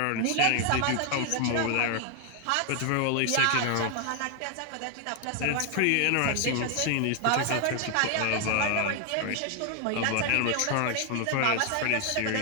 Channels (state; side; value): different; both; correlation 0.00